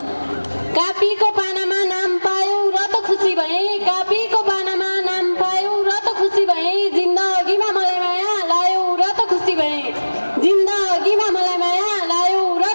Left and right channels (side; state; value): both; inverted; correlation -1.00